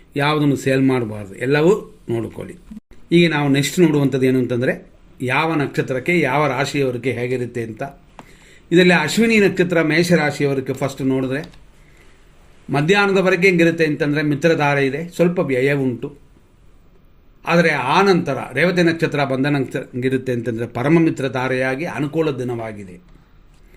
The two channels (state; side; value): identical; both; correlation 1.00